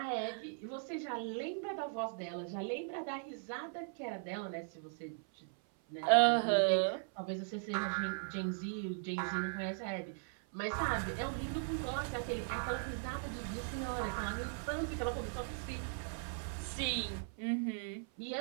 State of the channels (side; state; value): left; silent; 52 dB below the other